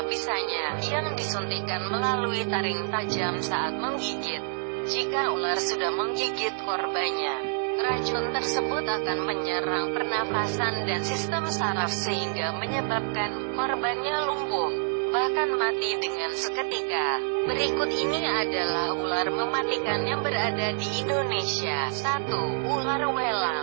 bisanya yang disuntikkan melalui taring tajam saat menggigit. Jika ular sudah menggigit korbannya, racun tersebut akan menyerang pernafasan dan sistem saraf sehingga menyebabkan korbannya lumpuh, bahkan mati dengan seketika. Berikut ini adalah ular mematikan yang berada di Indonesia. 1. Ular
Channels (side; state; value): left; silent; digital silence